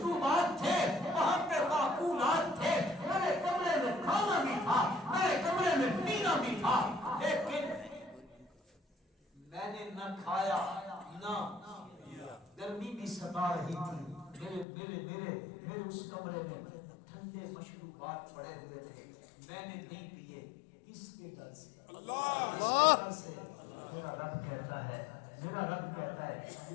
تھے، وہاں پہ معقولات تھے، میرے کمرے میں کھانا بھی تھا، میرے کمرے میں پینا بھی تھا، لیکن میں نے نہ کھایا نہ گرمی بھی ستا رہی تھی. میرے اس کمرے میں ٹھنڈے مشروبات پڑے ہوئے تھے، میں نے نہیں پیے. کس کے ڈر سے؟ اللہ ڈر سے. میرا رب کہتا ہے، میرا رب کہتا ہے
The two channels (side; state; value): right; drops out; at 14.7 s